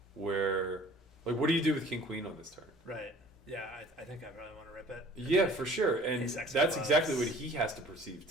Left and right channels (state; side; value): normal; both; correlation 0.50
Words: where like what do you do with King Queen on this turn? Right. Yeah, I think I really want to rip it. Yeah, for sure. And that's exactly what he has to perceive